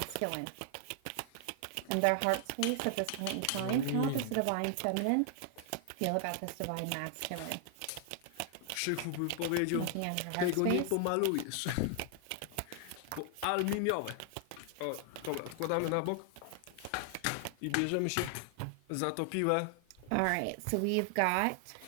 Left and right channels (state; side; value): different; both; correlation 0.00